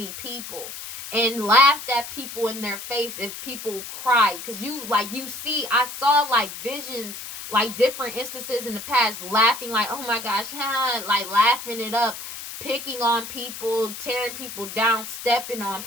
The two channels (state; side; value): noise; left; hiss, 10 dB below the sound